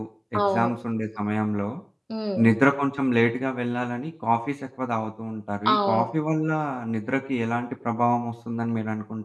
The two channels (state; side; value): identical; both; correlation 1.00